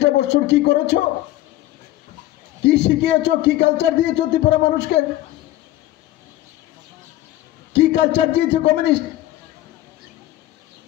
বছর কি করেছো? কি শিখিয়েছ? কি কালচার দিয়েছ ত্রিপুরা মানুষকে? কি কালচার দিয়েছে কমিউনিস্ট?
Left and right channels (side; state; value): right; quieter; 15.2 dB